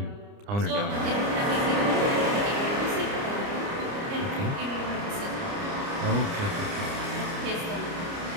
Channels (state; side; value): late; left; 29 ms